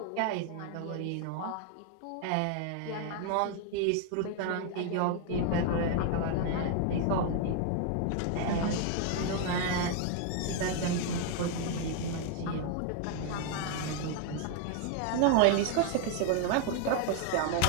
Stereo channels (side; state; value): both; different; correlation 0.00